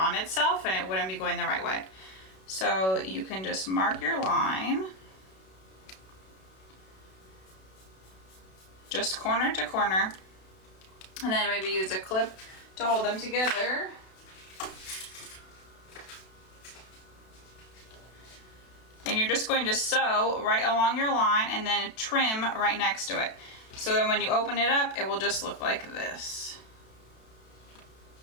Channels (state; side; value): late; right; 32 ms